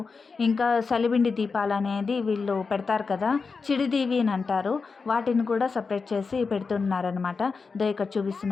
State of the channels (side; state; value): right; quieter; 4.7 dB